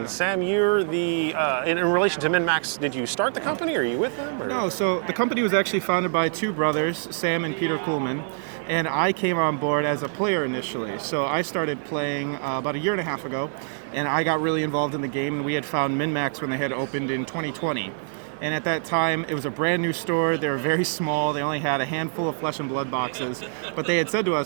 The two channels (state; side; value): silent; left; 55 dB below the other